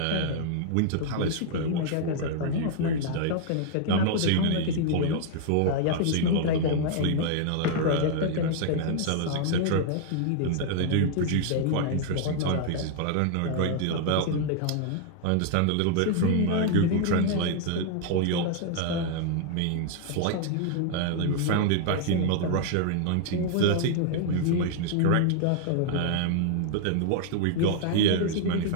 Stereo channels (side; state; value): both; different; correlation 0.00